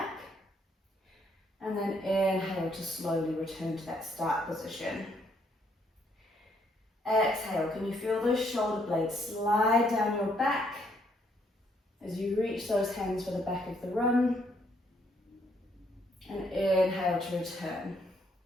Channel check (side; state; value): both; normal; correlation 0.71